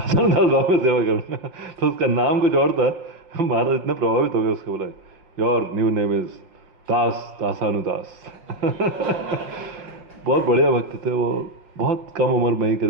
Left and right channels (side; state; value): left; late; 5.5 ms